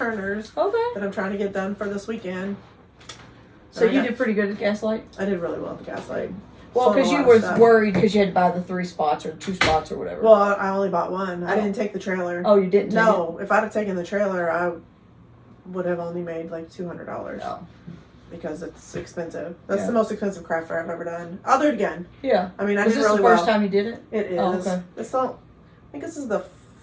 Okay. that I'm trying to get done for this weekend. So you did pretty good at Gaslight? I did really well at the gaslight. Well, Sold a because you lot of was stuff. worried because you had to buy the 3 spots or 2 spots or whatever. Well, I only bought one. I Oh. didn't take the trailer. Oh, you didn't? No, if I'd have taken the trailer, I would have only made like $200 Oh. because it's expensive. That's Yeah. the most expensive craft fair I've ever done. I'll do it again. Yeah. I mean, I Was did this really the first well. time you did it? It is. Oh, okay. It's all, I think this is the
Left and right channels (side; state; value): both; identical; correlation 1.00